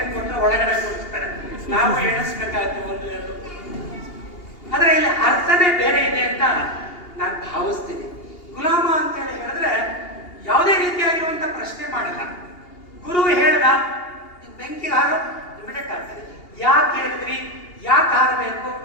ಕೊಟ್ಟರೆ ಒಳಗಡೆ ಕೊಡ್ತಾರೆ, ನಾವು ಎಣಿಸ್ಬೇಕಾಗುತ್ತೆ ಒಂದು ಎರಡು. ಆದ್ರೆ ಇಲ್ಲಿ ಅರ್ಥನೇ ಬೇರೆ ಇದೆ ಅಂತ ನಾನು ಭಾವಿಸ್ತೀನಿ. ಗುಲಾಮ ಅಂತ ಹೇಳಿದ್ರೆ ಯಾವುದೇ ರೀತಿಯಾಗಿರುವಂತ ಪ್ರಶ್ನೆ ಮಾಡಲ್ಲ. ಗುರು ಹೇಳ್ದ ಬೆಂಕಿ ಹಾರೋ ಇಮಿಡಿಯೇಟ್ ಆಗ್ತದೆ. ಯಾಕೆ ಹೇಳಿದ್ರಿ, ಯಾಕೆ ಹಾರಬೇಕು,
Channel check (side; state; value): right; late; 2.8 ms